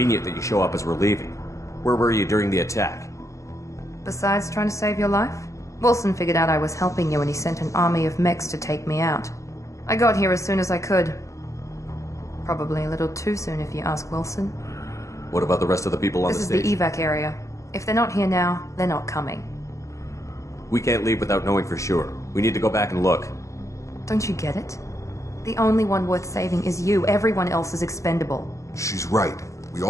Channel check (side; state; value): right; late; 0.15 ms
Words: that you show up as we're leaving. Where were you during the attack? Besides trying to save your life? Wilson figured out I was helping you and he sent an army of mechs to take me out. I got here as soon as I could. Probably a little too soon if you ask Wilson. What about the rest of the people on the station? This is the evac area. If they're not here now, they're not coming. We can't leave without knowing for sure. We need to go back and look. Don't you get it? The only one worth saving is you. Everyone else is expendable. She's right. We